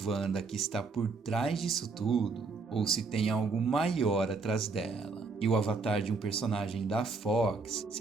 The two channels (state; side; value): quieter; left; 4.3 dB